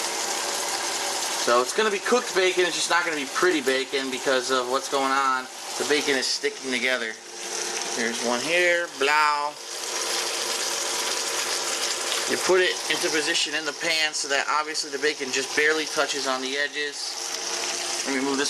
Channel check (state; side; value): identical; both; correlation 1.00